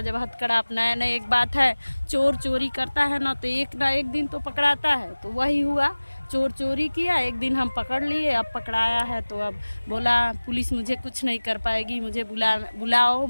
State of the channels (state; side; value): inverted; both; correlation -1.00